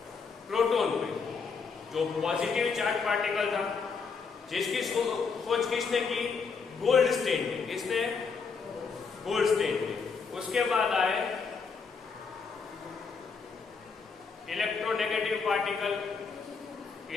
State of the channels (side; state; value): right; quieter; 5.2 dB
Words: प्रोटॉन पे जो पॉजिटिव चार्ज पार्टिकल था जिसकी खोज किसने की? गोल्डस्टीन ने. किसने? गोल्डस्टीन ने. उसके बाद आए इलेक्ट्रोनेगेटिव पार्टिकल